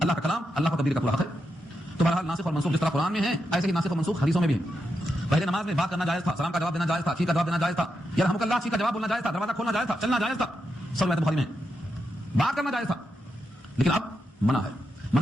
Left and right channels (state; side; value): normal; both; correlation 0.85